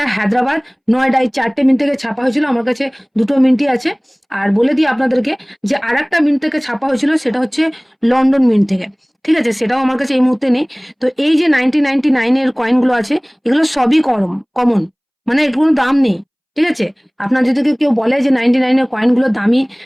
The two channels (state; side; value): identical; both; correlation 1.00